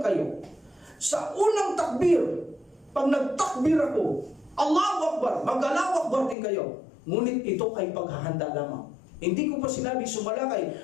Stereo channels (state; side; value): drops out; right; at 6.4 s